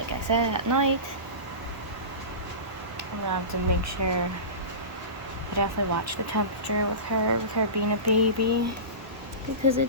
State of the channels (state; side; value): late; left; 1.0 ms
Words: I said, at night, I'm gonna have to make sure I definitely watch the temperature with her being a baby. Because